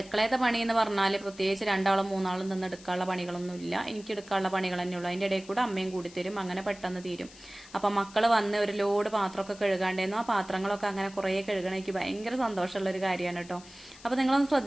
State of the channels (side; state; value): left; noise; hiss, 21 dB below the sound